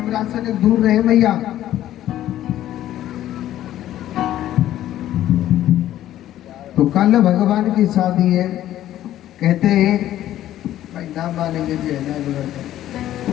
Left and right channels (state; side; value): quieter; right; 12.9 dB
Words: से दूर रहे भैया। तो कल भगवान की शादी है, कहते हैं भाई नाम मानेंगे जी है ना।